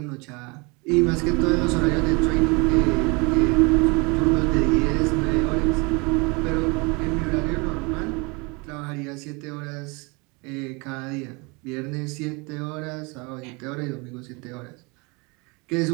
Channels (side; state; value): left; quieter; 28.6 dB